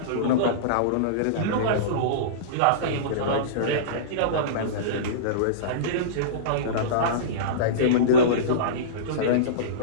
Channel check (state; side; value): different; both; correlation -0.06